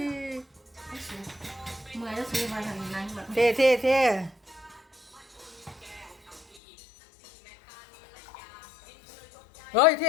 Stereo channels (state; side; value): drops out; right; at 6.6 s